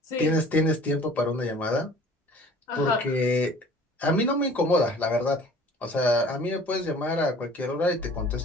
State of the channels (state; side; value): normal; both; correlation 0.49